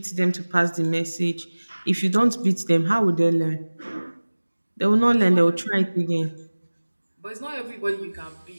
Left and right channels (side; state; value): both; inverted; correlation -1.00